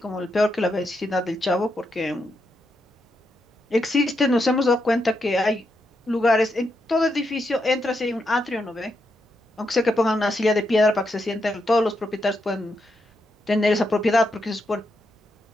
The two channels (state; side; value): normal; both; correlation 0.82